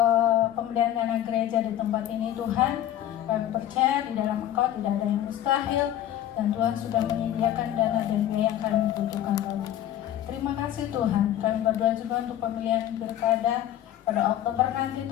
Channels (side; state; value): right; quieter; 11.9 dB